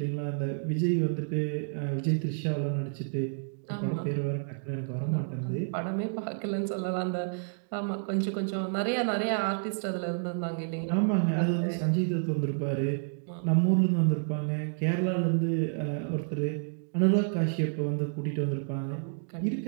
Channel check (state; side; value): silent; left; digital silence